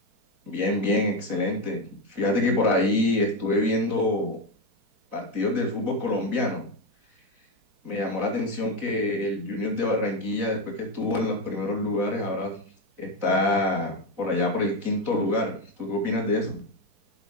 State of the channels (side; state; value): left; late; 4.0 ms